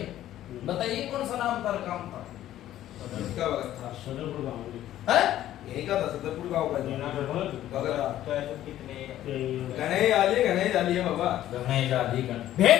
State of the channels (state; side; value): quieter; right; 12.9 dB